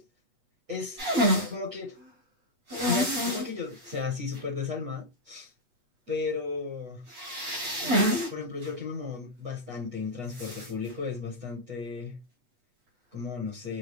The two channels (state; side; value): late; left; 8.2 ms